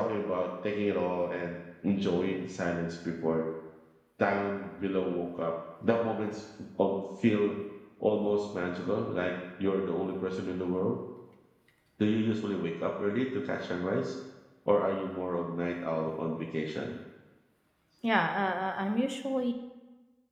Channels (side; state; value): both; identical; correlation 1.00